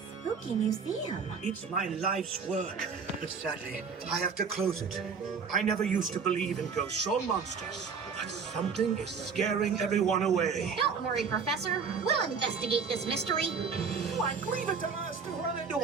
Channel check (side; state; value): left; quieter; 5.8 dB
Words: museum. It's my life's work, but sadly, I have to close it. I never used to believe in ghosts or monsters, but something is scaring everyone away. Don't worry, Professor. We'll investigate this mystery. Like, leave it to us to run into a